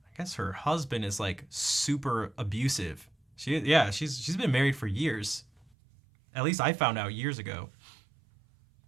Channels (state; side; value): drops out; left; at 5.7 s